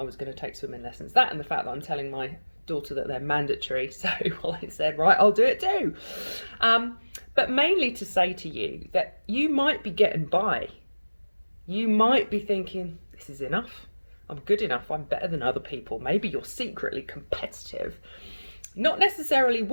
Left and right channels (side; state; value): both; inverted; correlation -1.00